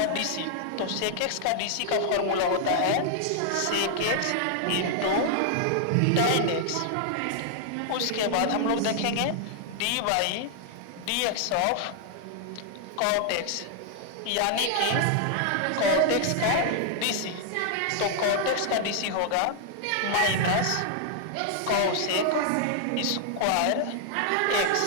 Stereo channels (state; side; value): different; both; correlation 0.00